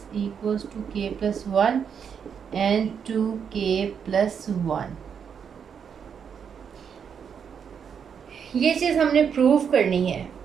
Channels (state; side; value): quieter; left; 7.2 dB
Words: equals to k + 1 and 2k + 1। ये चीज़ हमने प्रूव करनी है।